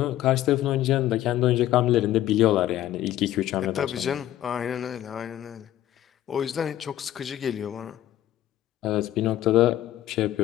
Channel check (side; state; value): right; quieter; 13.3 dB